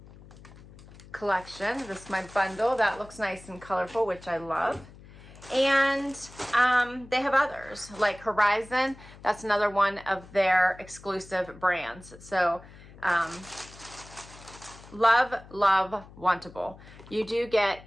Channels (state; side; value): noise; left; hum, 20 dB below the sound